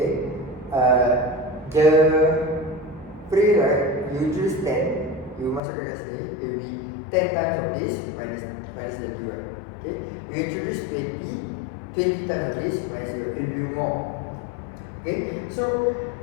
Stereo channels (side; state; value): right; drops out; at 5.6 s